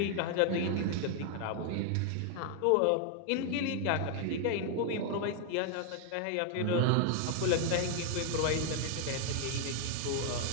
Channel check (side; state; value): both; different; correlation 0.00